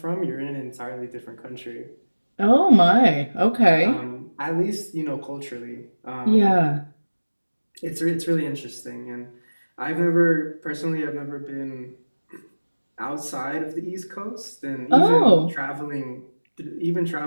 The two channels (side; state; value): both; inverted; correlation -1.00